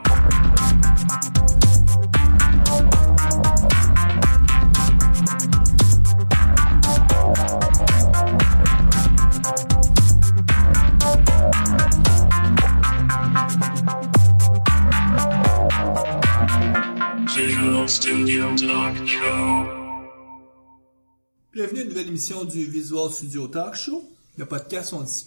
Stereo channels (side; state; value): both; inverted; correlation -1.00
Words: Visual Studio Talk Show. Bienvenue à une nouvelle émission du Visual Studio Talk Show. Le podcast où on